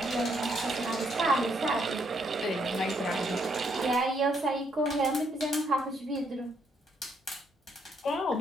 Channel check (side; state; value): both; normal; correlation 0.72